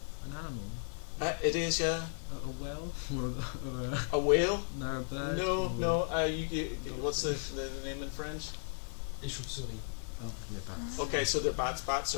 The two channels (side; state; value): right; silent; 54 dB below the other